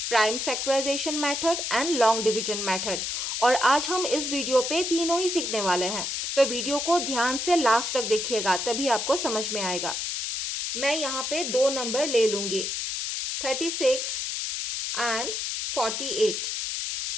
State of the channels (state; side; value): noise; left; hiss, 2 dB below the sound